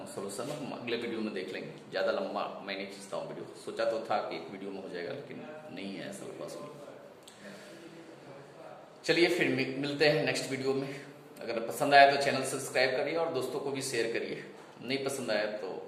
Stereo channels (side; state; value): both; identical; correlation 1.00